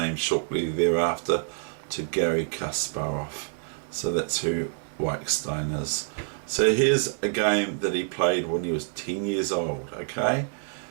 shortly thereafter to Garry Kasparov. So that's who Weegenaar is. So here's a game that he played when he was 10 years old, okay?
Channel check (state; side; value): silent; left; 60 dB below the other